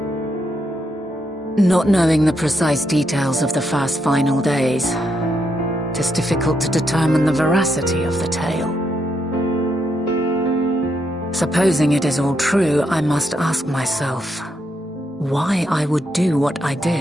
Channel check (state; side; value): normal; both; correlation 0.80